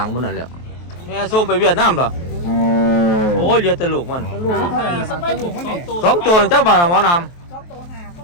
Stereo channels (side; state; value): right; late; 23 ms